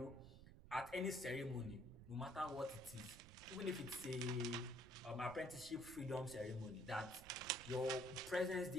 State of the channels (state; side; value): noise; right; rumble, 16 dB below the sound